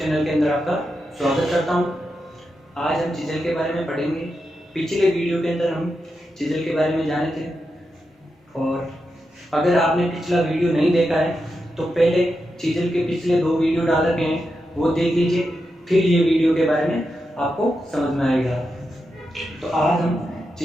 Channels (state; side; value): normal; both; correlation 0.87